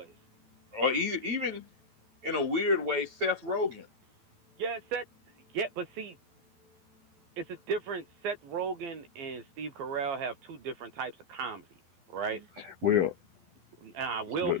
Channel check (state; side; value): late; left; 12 ms